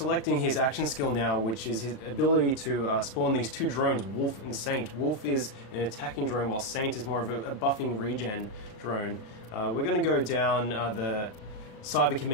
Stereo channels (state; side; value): late; right; 36 ms